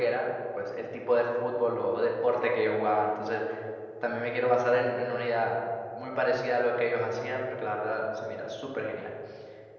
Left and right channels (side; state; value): both; identical; correlation 1.00